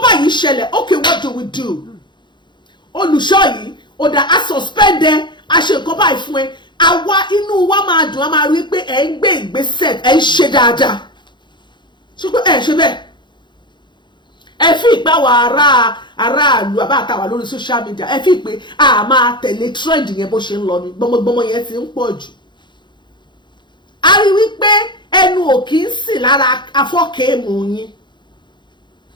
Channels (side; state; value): right; late; 0.22 ms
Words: báyìí ṣẹlẹ̀ okay what do we do Olùṣọ́ yìí ọ̀dà a suspend ẹ a ṣe nǹkan báyìí fún ẹ àwa inú wa máa dùn á máa rí pé ẹ ń gbé ìgbésẹ̀ ẹ ń ṣe dáadáa ṣùgbọ́n ẹ ṣe bẹ́ẹ̀ ẹ fi ìpáwọ̀ aráàlú àbáàtàwà lórí social media ẹ fi pé a máa tẹ̀lé trend yẹn bó ṣe ń lọ ní gbọmọgbọmọ yẹn ti ń pọ̀ jù a rí wípé ẹnu ò kì í sì lára afọ́kẹ́ẹ̀mù yín